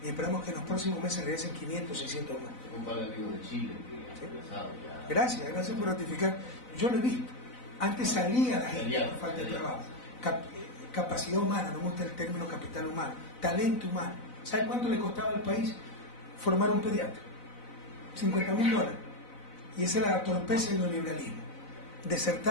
y esperamos que en los próximos meses regresen 500, 600 más. Un par de amigos de Chile que han regresado ya. Gracias por ratificar. Yo lo he visto. Antes salía la gente por falta de trabajo. Capacidad humana, no me gusta el término capital humano, talento humano. ¿Sabe cuánto le costaba al país formar un pediatra? $50.000. Y esa era la torpeza del neoliberalismo.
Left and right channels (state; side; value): late; right; 4.0 ms